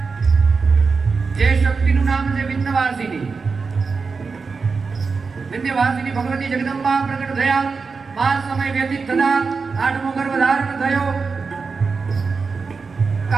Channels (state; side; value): quieter; left; 4.8 dB